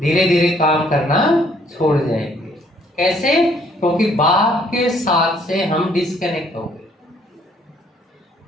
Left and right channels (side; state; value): both; normal; correlation 0.64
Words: धीरे काम करना छोड़ जाएंगे। कैसे? क्योंकि बाप के साथ से हम डिस्कनेक्ट हो गए।